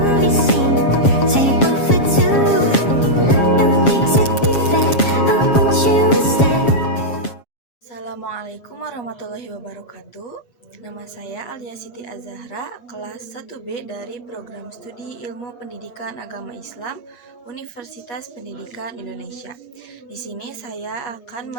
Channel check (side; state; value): right; late; 7.3 ms